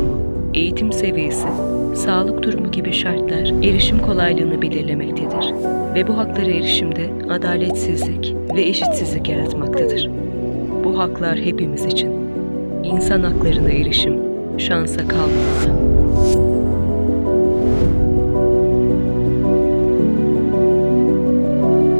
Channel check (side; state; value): both; inverted; correlation -1.00